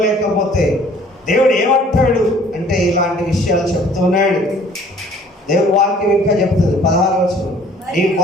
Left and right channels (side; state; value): both; normal; correlation 0.55